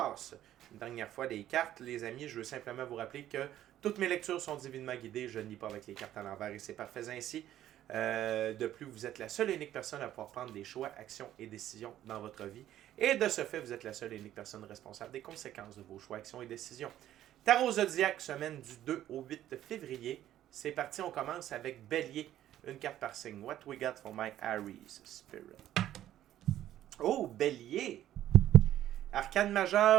une dernière fois des cartes, les amis, je veux simplement vous rappeler que toutes mes lectures sont divinement guidées. Je ne lis pas avec les cartes à l'envers et c'est parfait ainsi. De plus, vous êtes la seule et unique personne à pouvoir prendre des choix, actions et décisions dans votre vie. Et de ce fait, vous êtes la seule et unique personne responsable des conséquences de vos choix, actions et décisions. Tarot Zodiac, semaine du 2 au 8 février. C'est parti, on commence avec Bélier. Une carte par signe. What we got for my Aries Spirit? Oh, Bélier! Arcane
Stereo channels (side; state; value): left; quieter; 12.5 dB